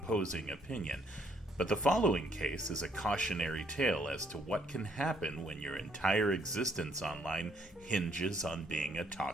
opinion. But the following case is a cautionary tale as to what can happen when your entire existence online hinges on being a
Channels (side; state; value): both; normal; correlation 0.68